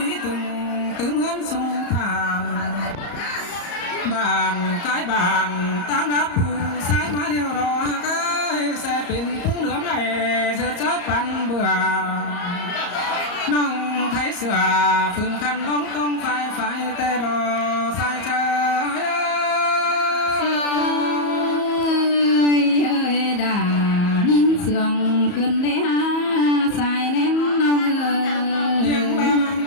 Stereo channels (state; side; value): late; right; 34 ms